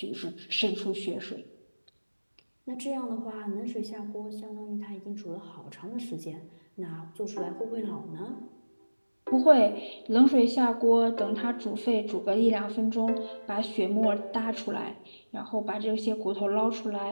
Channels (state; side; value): inverted; both; correlation -1.00